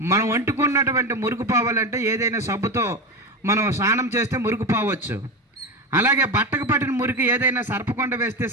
మనం వంటుకున్నటువంటి మురుగు పోవాలంటే ఏదైనా సబ్బుతో మనం స్నానం చేస్తే మురుగు పోవచ్చు. అలాగే బట్టకు పట్టిన మురికి ఏదైనా సర్పకొండ వేస్తే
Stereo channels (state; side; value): normal; both; correlation 0.20